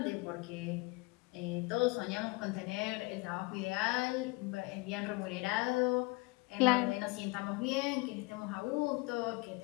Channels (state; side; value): quieter; right; 26.1 dB